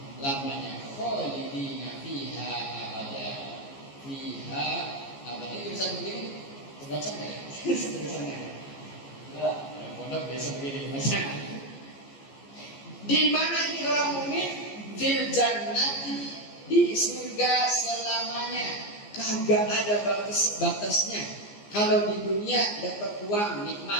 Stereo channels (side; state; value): right; late; 14 ms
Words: Khalidina fiha abada, fiha abada. Itu bisa begini, terbaca nggak ya? Tulisannya. Pondok biasa begini baca. Di mana ini orang mukmin? Fil jannati, di surga selamanya. Kagak ada batas-batasnya. Kalau di dunia dapat uang